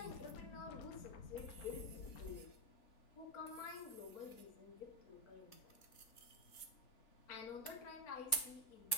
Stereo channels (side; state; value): right; late; 3.5 ms